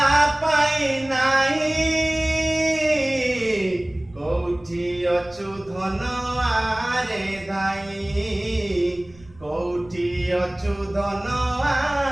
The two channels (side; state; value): right; noise; rumble, 24 dB below the sound